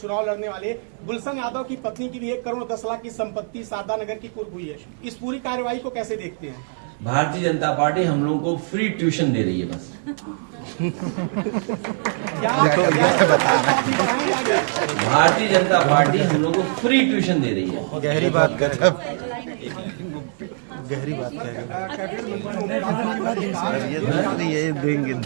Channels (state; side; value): silent; left; digital silence